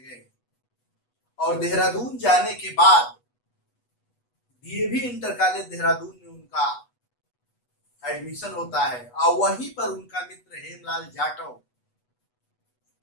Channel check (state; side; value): late; right; 8.2 ms